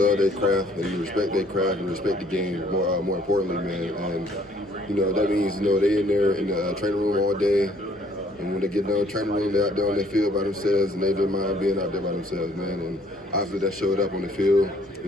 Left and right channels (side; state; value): both; normal; correlation 0.62